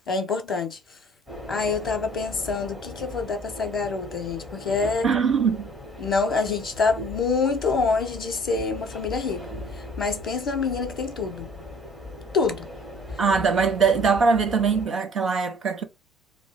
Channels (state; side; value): normal; both; correlation 0.52